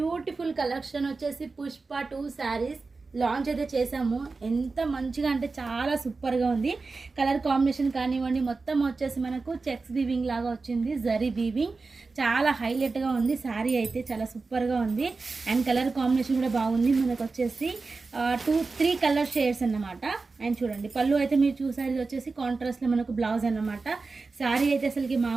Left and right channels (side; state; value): left; quieter; 4.0 dB